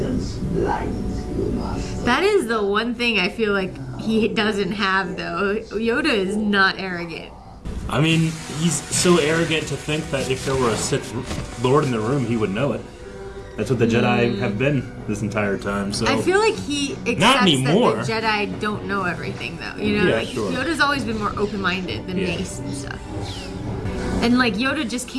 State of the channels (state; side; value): identical; both; correlation 1.00